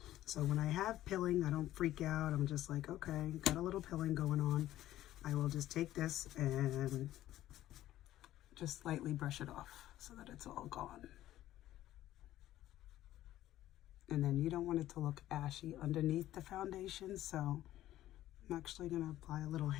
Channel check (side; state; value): right; quieter; 13.9 dB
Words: So when I have pilling, I don't freak out. I'm just like, okay, got a little pilling going on. I will just take this and just slightly brush it off so that it's all gone. And then you don't want it to look ashy underneath the foundation, so I'm actually going to apply a little